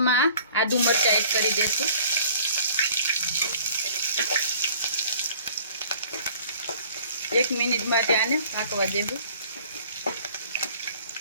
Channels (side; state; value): both; inverted; correlation -0.52